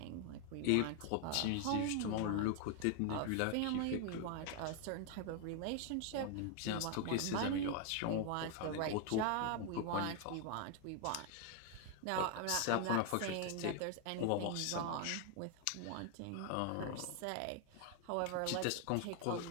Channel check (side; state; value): both; different; correlation 0.00